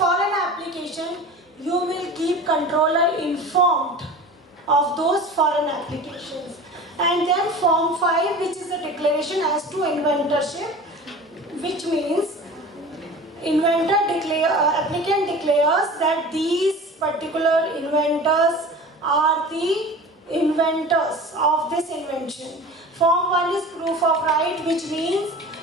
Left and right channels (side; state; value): both; normal; correlation 0.38